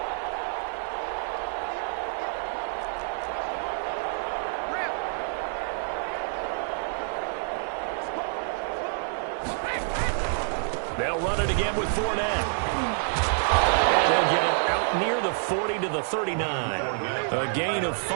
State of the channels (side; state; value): left; silent; digital silence